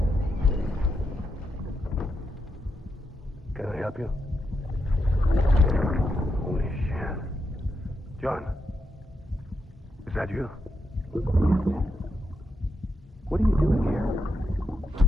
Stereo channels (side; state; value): both; normal; correlation 0.83